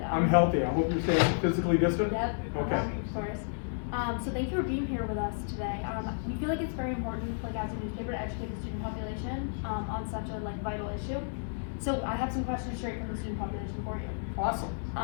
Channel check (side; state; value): right; silent; digital silence